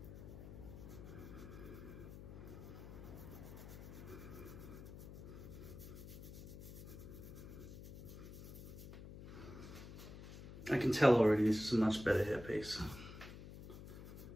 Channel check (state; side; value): noise; left; hum, 12 dB below the sound